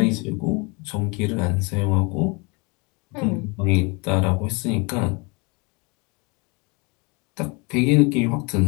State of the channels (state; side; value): quieter; right; 29.7 dB